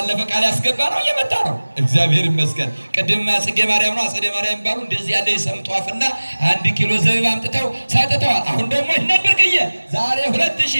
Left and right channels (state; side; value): inverted; both; correlation -1.00